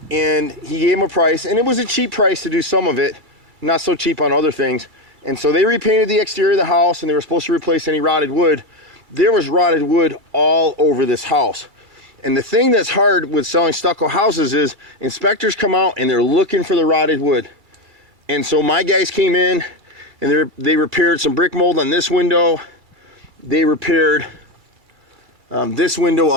and he gave him a price, and it was a cheap price to do some of it, not so cheap on other things. And so they repainted the exterior of the house, and they were supposed to replace any rotted wood. There was rotted wood all over this house. And the thing that's hard with selling stucco houses is inspectors come out and they're looking for the rotted wood. And so my guys came in and they repaired some brick mold on this window. They repaired this window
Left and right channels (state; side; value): late; left; 2.3 ms